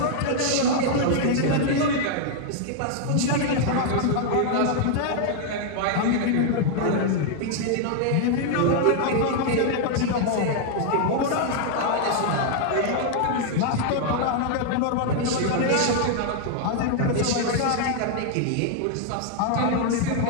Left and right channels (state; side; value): different; both; correlation 0.00